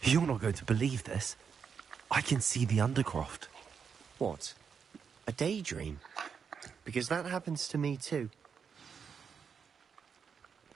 You're not going to believe this. I can see the Undercroft. What? A daydream? Because that happens to me too.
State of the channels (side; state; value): left; quieter; 6.5 dB